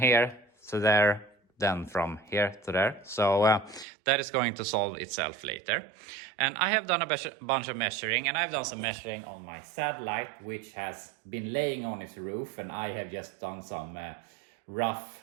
to there than from here to there. So that is going to solve itself later. And I have done a bunch of measuring, and I've done some measuring on my Satellite, which has been laying on its roof, and I have just done some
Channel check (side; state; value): left; drops out; at 3.9 s